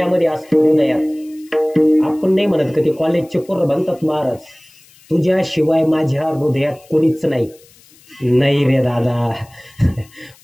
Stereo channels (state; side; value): noise; left; hiss, 27 dB below the sound